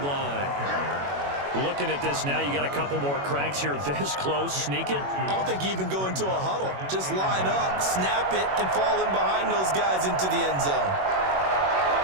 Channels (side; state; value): left; late; 21 ms